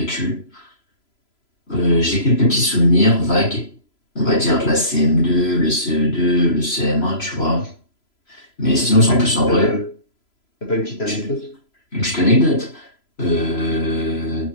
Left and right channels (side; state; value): right; late; 3.0 ms